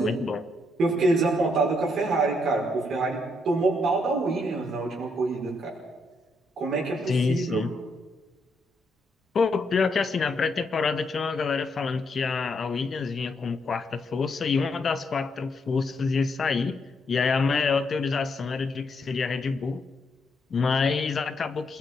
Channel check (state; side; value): normal; both; correlation 0.76